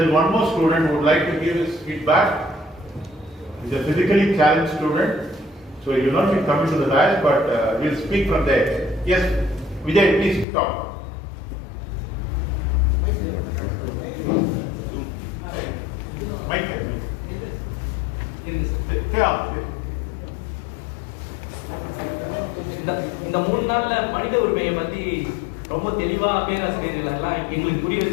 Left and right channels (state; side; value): drops out; right; at 10.5 s